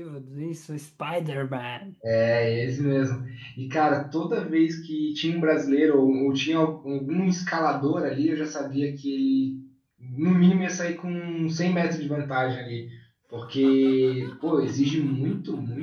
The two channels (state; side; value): identical; both; correlation 1.00